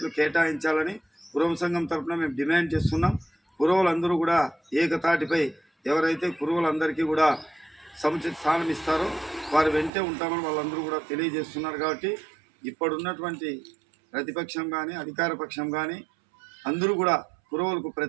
కేటాయించాలని కురువ సంఘం తరఫున మేము డిమాండ్ చేస్తున్నాం. కురువులందరూ కూడా ఏకతాటిపై ఎవరైతే కురువులందరికీ కూడా సముచిత స్థానం ఇస్తారో వారు వెంటే ఉంటామని వాళ్ళందరూ కూడా తెలియజేస్తున్నారు. కాబట్టి ఇప్పుడున్నటువంటి ప్రతిపక్షం కానీ అధికార పక్షం కానీ అందరూ కూడా కురువులకు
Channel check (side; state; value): left; drops out; at 9.9 s